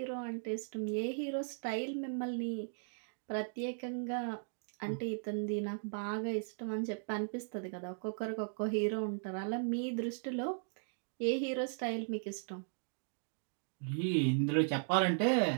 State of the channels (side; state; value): left; silent; digital silence